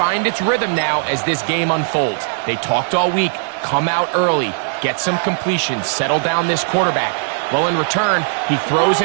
its rhythm now as this game unfolds. They talked all week, come out early, get some completions, settle down this quarterback. Well, in return, he throws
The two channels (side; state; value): left; silent; 58 dB below the other